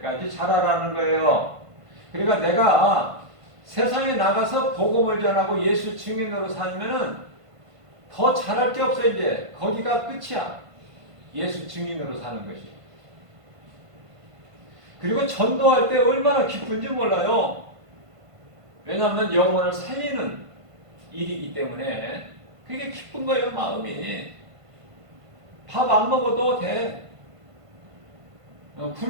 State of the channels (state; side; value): late; left; 1.5 ms